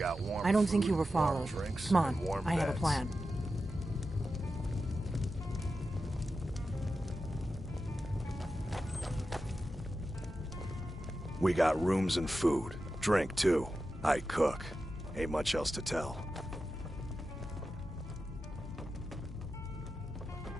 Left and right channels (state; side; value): normal; both; correlation 0.91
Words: warm I don't food, think you were warm followed. drinks, Come on, and warm I have a beds. plan. We got rooms and food. Drink, too. I cook. Ain't much else to tell.